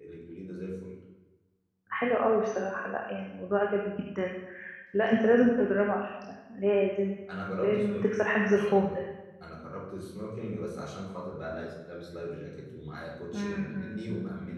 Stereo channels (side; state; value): both; identical; correlation 1.00